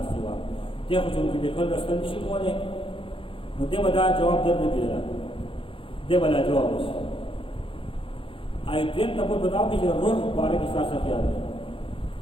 و دې خو چې د خپل رسل نشي کولای نو دې ودا جواب درنه کیږي دې ولا جواب وشي آی دې ته په بداو کې روح باره کې ساسه خیال دی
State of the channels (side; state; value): right; late; 0.25 ms